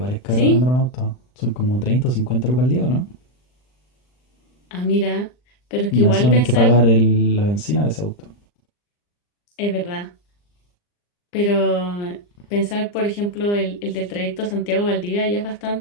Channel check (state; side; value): late; right; 39 ms